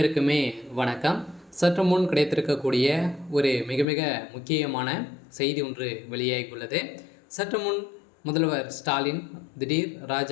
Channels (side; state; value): right; drops out; at 3.9 s